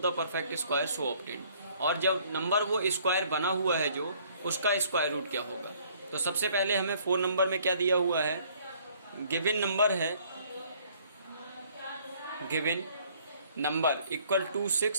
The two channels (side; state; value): both; inverted; correlation -0.59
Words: the perfect square so obtained. और जब नंबर वो स्क्वायर बना हुआ है जो उसका स्क्वायर रूट क्या होगा. तो सबसे पहले हमें 4 नंबर में क्या दिया हुआ है, गिवन नंबर है, गिवन नंबर इक्वल